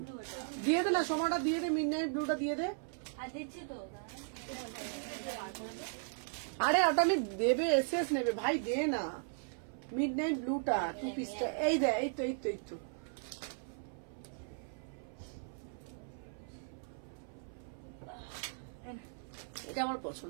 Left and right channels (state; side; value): silent; left; 53 dB below the other